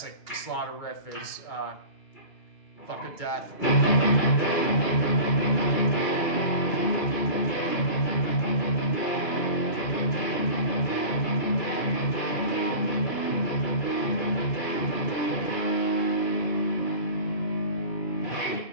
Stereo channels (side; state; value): right; late; 2.4 ms